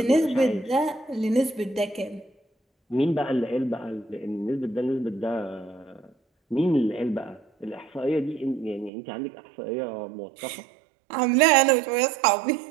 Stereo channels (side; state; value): left; drops out; at 8.9 s